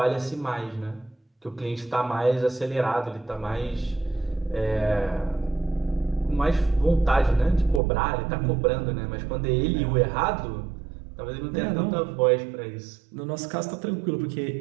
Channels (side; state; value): left; drops out; at 7.8 s